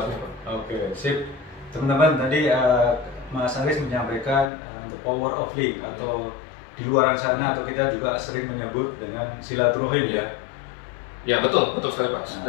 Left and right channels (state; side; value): drops out; right; at 4.5 s